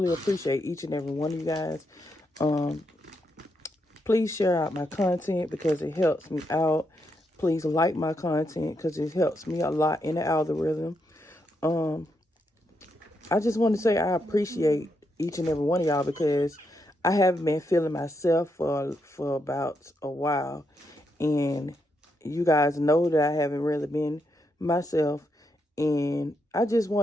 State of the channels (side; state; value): both; normal; correlation 0.81